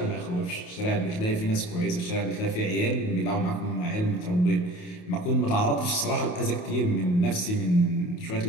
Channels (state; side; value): late; right; 28 ms